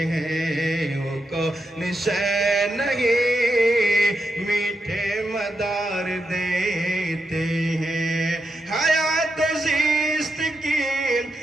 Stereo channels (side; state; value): both; normal; correlation 0.85